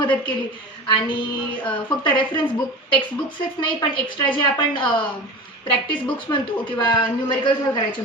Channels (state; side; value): normal; both; correlation 0.32